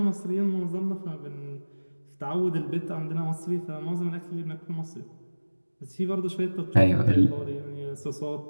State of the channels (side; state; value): both; inverted; correlation -1.00